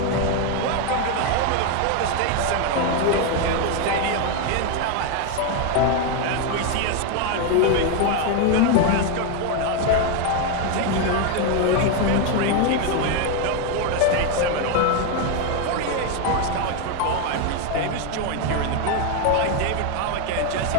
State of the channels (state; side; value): different; both; correlation 0.02